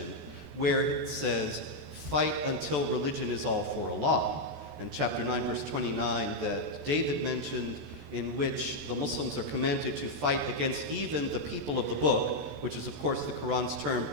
where it says, fight until religion is all for Allah. And chapter 9, verse 29 that David mentioned, in which the Muslims are commanded to fight against even the people of the book, which is of course the Quran's term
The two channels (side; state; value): left; late; 14 ms